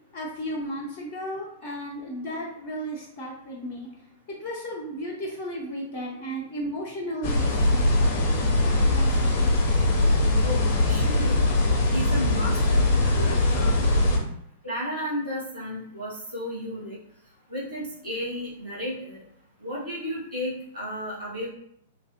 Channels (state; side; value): inverted; both; correlation -0.65